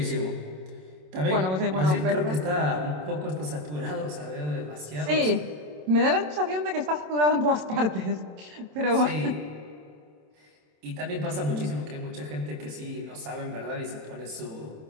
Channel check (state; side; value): late; left; 27 ms